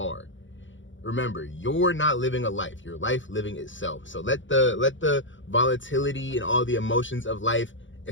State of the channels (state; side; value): late; right; 0.55 ms